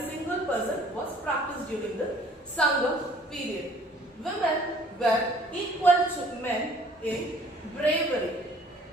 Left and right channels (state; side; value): normal; both; correlation 0.56